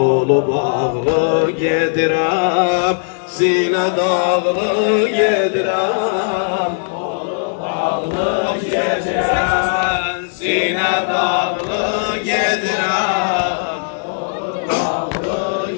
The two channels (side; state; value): right; silent; digital silence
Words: bağlı gedirem. Sine dağlı gedirem, kolu bağlı gedirem. Sine dağlı gedirem, kolu bağlı